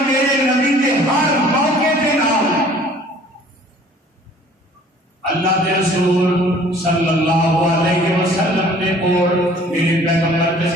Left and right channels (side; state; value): both; normal; correlation 0.53